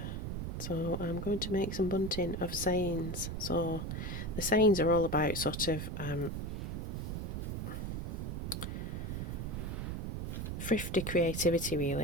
So I'm going to make some bunting of sayings. So the sayings are all about sort of thrifty creativity,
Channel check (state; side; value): noise; right; rumble, 3 dB below the sound